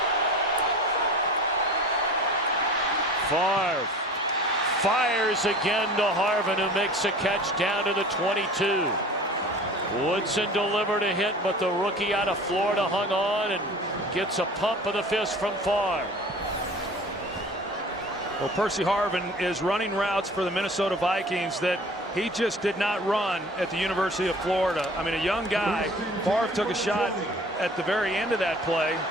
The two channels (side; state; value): both; normal; correlation 0.43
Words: Favre fires again to Harvin, who makes a catch down to the 22. Woodson delivered a hit, but the rookie out of Florida hung on and gets a pump of the fist from Favre. Well, Percy Harvin is running routes for the Minnesota Vikings that he just did not run at the University of Florida. I mean, a young guy. Favre took a shot at the very end of that play.